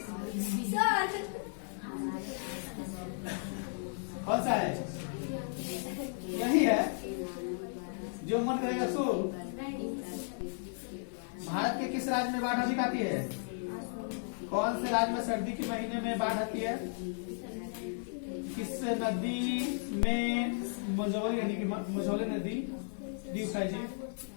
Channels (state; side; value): silent; right; 55 dB below the other